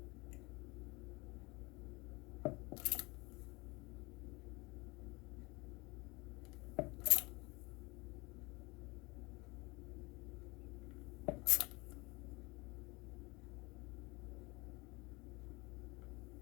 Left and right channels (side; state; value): right; quieter; 24.9 dB